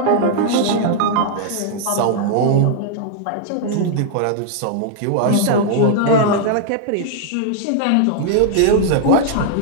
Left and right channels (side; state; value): both; different; correlation -0.01